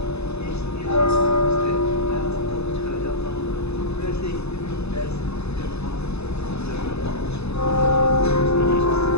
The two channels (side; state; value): right; late; 0.79 ms